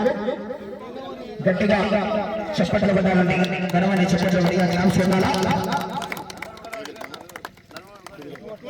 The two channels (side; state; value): both; identical; correlation 1.00